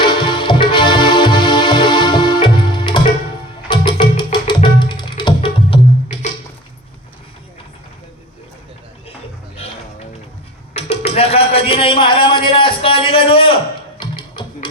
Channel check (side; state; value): both; normal; correlation 0.35